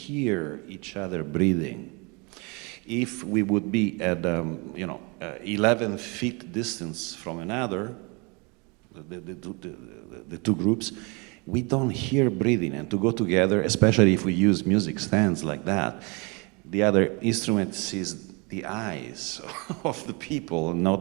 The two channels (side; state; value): left; quieter; 30.0 dB